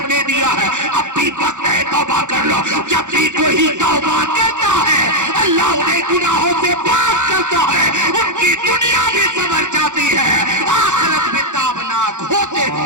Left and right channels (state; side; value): late; left; 0.85 ms